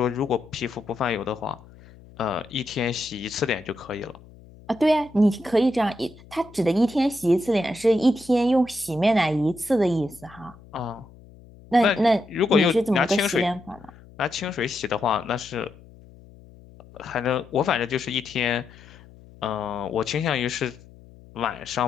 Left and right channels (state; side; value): noise; left; hum, 22 dB below the sound